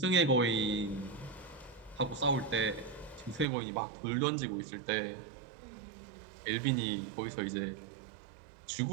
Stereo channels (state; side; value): drops out; left; at 3.5 s